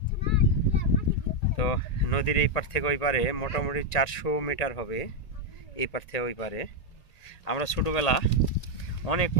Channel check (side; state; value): right; late; 1.9 ms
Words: তো নদীর এই পার থেকে ওই পারে মোটামুটি 400 মিটার হবে, এই পার থেকে ওই পারে। আমরা ছোটোবেলা